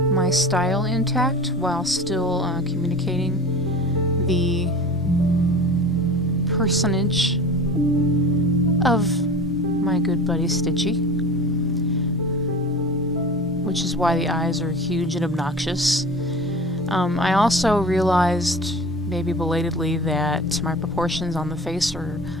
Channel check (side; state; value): both; normal; correlation 0.37